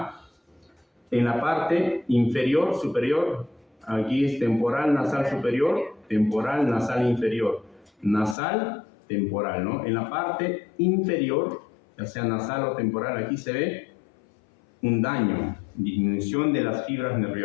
En la parte inferior, superior, aquí es temporal nasal superior, temporal nasal inferior, nasal temporal, ¿no? En la parte inferior, ya sea nasal o temporal, aquí se ve un daño, disminución de las fibras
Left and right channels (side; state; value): right; drops out; at 8.3 s